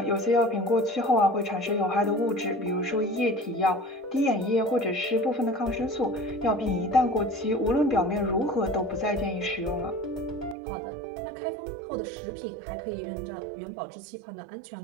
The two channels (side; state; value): left; drops out; at 10.6 s